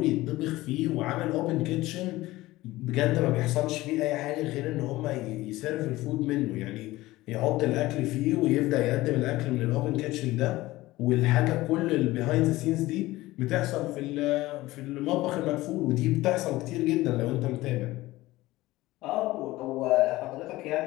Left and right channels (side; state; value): right; quieter; 18.1 dB